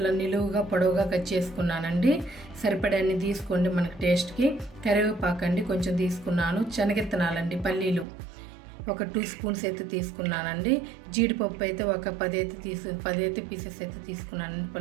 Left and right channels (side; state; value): left; drops out; at 8.1 s